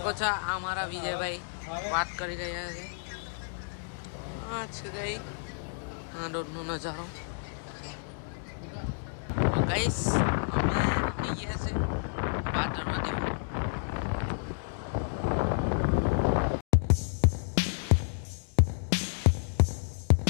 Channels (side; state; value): right; silent; digital silence